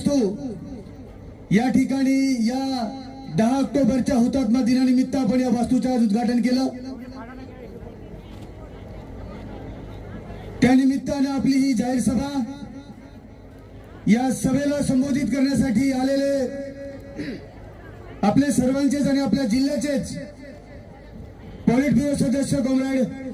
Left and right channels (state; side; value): identical; both; correlation 1.00